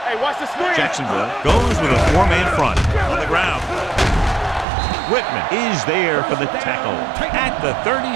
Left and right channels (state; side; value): drops out; left; at 4.7 s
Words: Hey, watch the screen. Jacksonville goes with a 4-man front on the ground. Whitman is there for the tackle at the